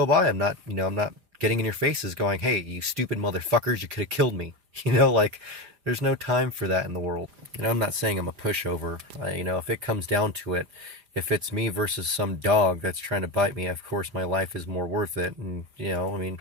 by. I'm not getting in your faces going, hey, you stupid motherfuckers, you could have killed me. Like, there's no time for that in the world. I'm not saying I'm a pushover. If it comes down to it, if it's me versus some dog that's trying to bite me, of course my life is more worth it. And, I mean,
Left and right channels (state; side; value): late; left; 4.9 ms